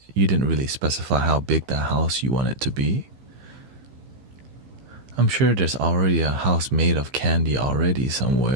really specify how big that house you want it to be. I'm sure there's already a house made of candy already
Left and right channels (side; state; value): left; late; 15 ms